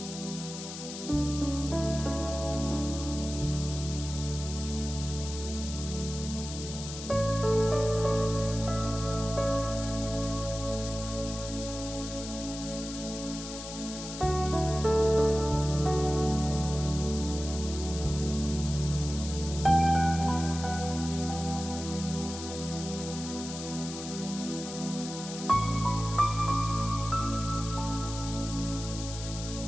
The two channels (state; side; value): noise; left; hiss, 10 dB below the sound